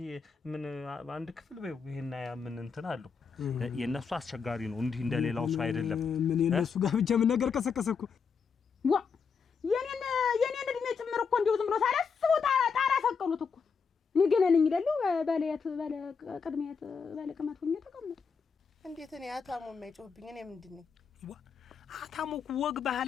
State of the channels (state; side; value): quieter; right; 5.8 dB